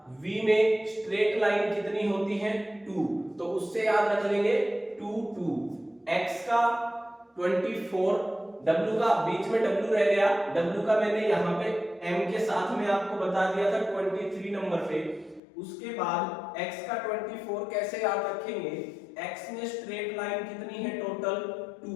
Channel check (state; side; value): drops out; right; at 15.4 s